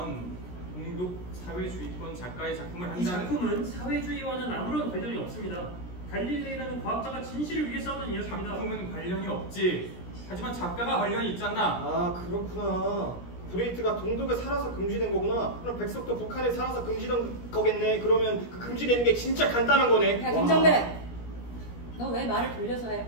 공독 사회주의권 작가의 작품을 이 한다는 작품은 사회주의와는 아무런 관련이 없습니다. 갈릴레이라는 과학자가 진실을 위해 싸우는 이야기입니다. 작품은 관련이 없지. 하지만 작가가 관련이 있잖아. 그렇구나. 브레이트가 동독에 살아서 금지된 거구나. 그럼 백석도 북한에 살아서 금지된 거겠네. 그러면 그 금지되는 게 진짜 간단한 거네. 야 김정배, 너 왜 말을 돌려서 해?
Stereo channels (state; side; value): late; right; 17 ms